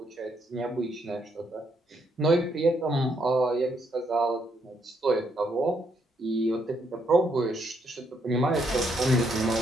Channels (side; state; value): both; normal; correlation 0.74